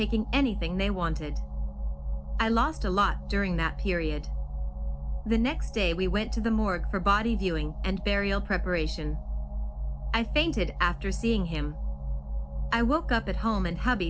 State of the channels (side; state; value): both; identical; correlation 1.00